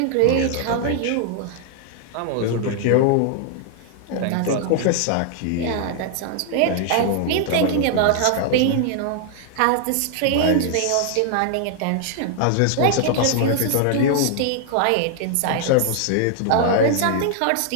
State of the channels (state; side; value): different; both; correlation 0.00